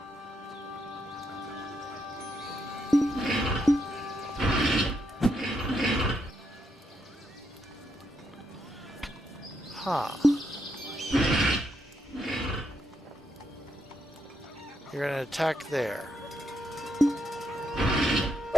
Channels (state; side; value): normal; both; correlation 0.79